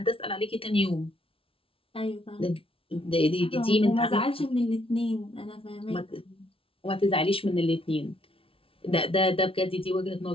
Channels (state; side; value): late; right; 0.26 ms